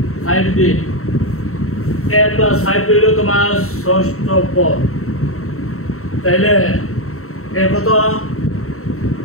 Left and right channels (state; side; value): late; right; 0.63 ms